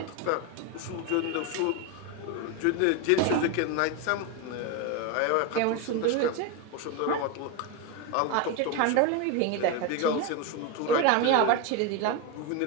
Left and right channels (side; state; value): both; different; correlation 0.03